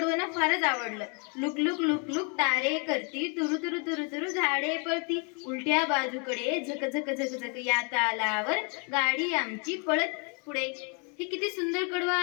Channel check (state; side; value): quieter; right; 36.1 dB